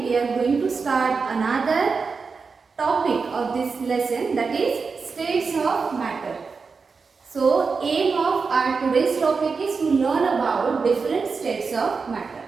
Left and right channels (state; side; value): quieter; left; 4.9 dB